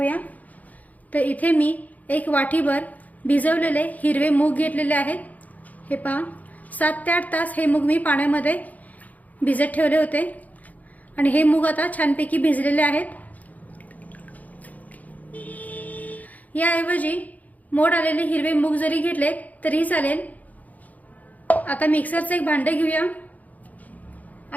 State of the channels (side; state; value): right; late; 0.077 ms